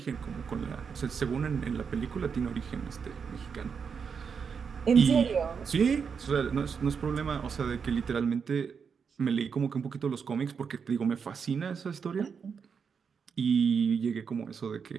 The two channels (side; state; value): left; quieter; 6.2 dB